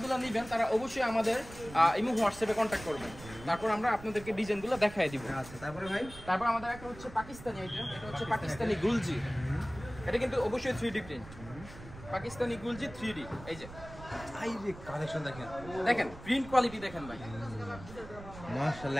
নেবেন তারা অবশ্যই আমাদের ইমো হোয়াটসঅ্যাপে কন্ট্যাক্ট করবেন, তারপর আমরা আপনাদেরকে ডিজাইনগুলো দেখাই দিব। আচ্ছা তারপরে ভাই? তারপর আমাদের একটা হচ্ছে পাকিস্তানি আইটেম, এটা হচ্ছে পাকিস্তানি গুলজি। এটা কিন্তু অবশ্যই 3D প্রিন্ট, পাকিস্তানি গুলজি 3D। এই যে এই যে কালেকশন দেখেন, দেখেন প্রিন্ট কোয়ালিটি দেখেন ভাই,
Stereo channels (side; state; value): right; noise; rumble, 16 dB below the sound